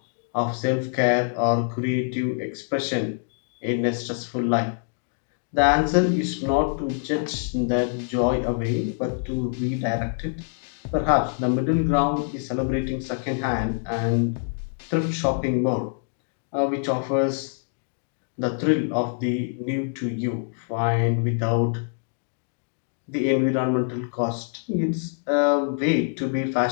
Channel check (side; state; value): right; silent; 62 dB below the other